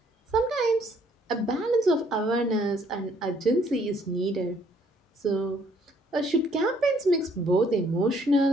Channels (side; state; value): both; normal; correlation 0.65